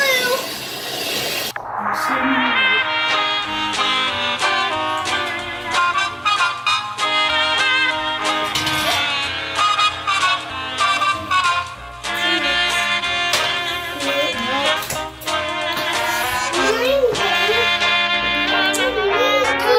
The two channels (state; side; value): identical; both; correlation 1.00